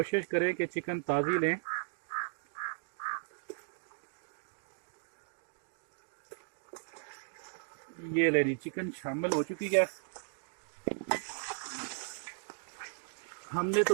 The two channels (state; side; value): silent; left; digital silence